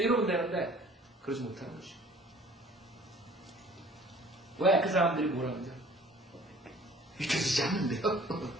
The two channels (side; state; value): both; normal; correlation 0.52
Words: 되는데 그러지 못하는 것이죠. 왜? 그 사람들이 뭐라는지 믿겨지지 않는데요.